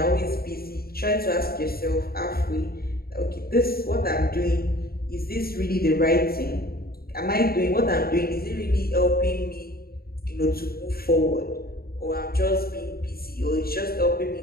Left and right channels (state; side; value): late; right; 0.44 ms